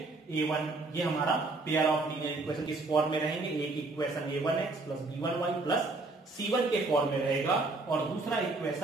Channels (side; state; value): left; quieter; 3.3 dB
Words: a1 ये हमारा पेयर ऑफ लीनियर इक्वेशन किस फॉर्म में रहेंगे, एक equation a1x plus b1y plus c1 के फॉर्म में रहेगा, और दूसरा